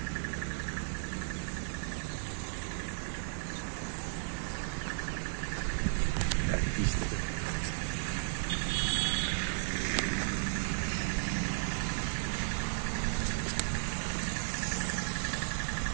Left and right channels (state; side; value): silent; left; digital silence